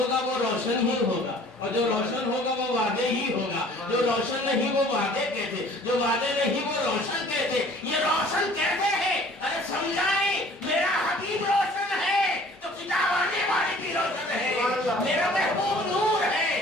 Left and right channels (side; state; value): both; normal; correlation 0.52